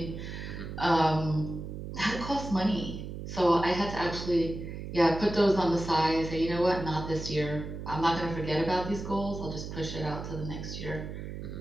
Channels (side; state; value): right; noise; hum, 8 dB below the sound